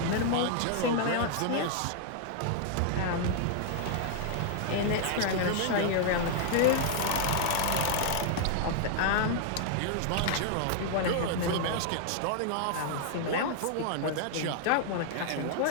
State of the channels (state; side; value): different; both; correlation 0.00